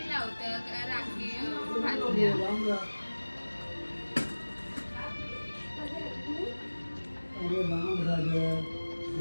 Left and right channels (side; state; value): both; inverted; correlation -1.00